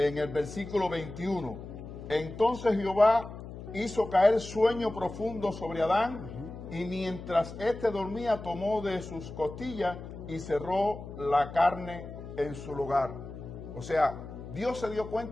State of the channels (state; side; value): noise; left; hum, 12 dB below the sound